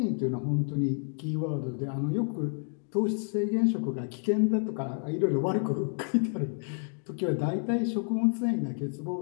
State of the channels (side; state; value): right; silent; 55 dB below the other